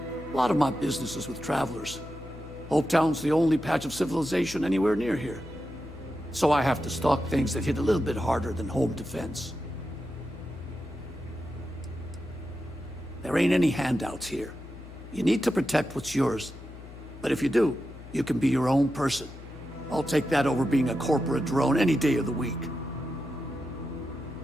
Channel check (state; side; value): noise; left; hum, 15 dB below the sound